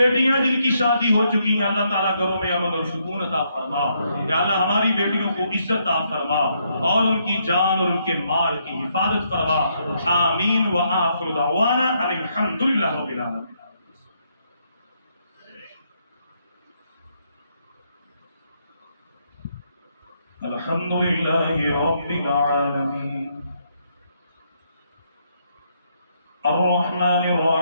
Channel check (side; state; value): both; inverted; correlation -0.75